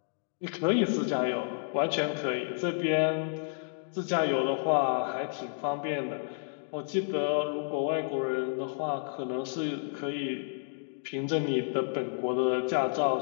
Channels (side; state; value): right; silent; digital silence